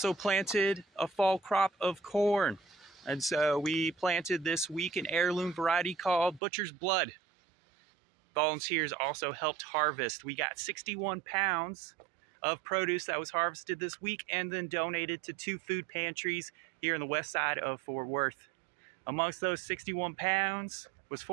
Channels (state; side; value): drops out; left; at 6.4 s